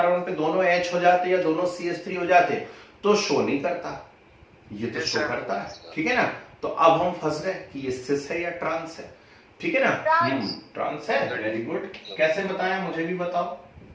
पे दोनों H हो जाते या दोनों CH3 हो जाते, तो शो नहीं करता, ये तो शो करता है, ठीक है ना। तो अब हम फंस गए कि ये सिस है या ट्रांस है, ठीक है ना। ट्रांस है, वेरी गुड। कैसे बताया, मुझे भी बताओ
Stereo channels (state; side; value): identical; both; correlation 1.00